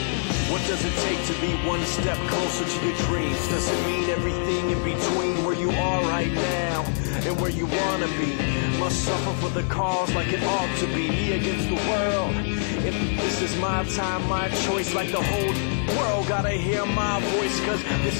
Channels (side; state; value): right; silent; digital silence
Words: What does it take to be one step closer to your dreams? Does it mean everything in between where you are right now and where you wanna be? Must suffer for the cause like it ought to be, me against the world. If this is my time, my choice, like the whole world gotta hear my voice, cause this